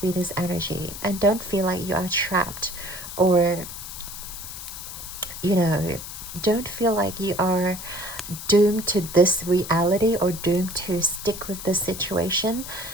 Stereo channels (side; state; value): left; noise; hiss, 10 dB below the sound